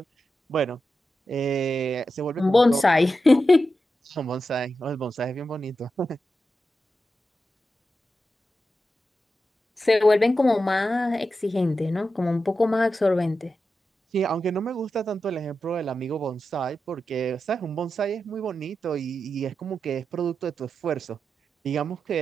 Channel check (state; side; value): normal; both; correlation 0.90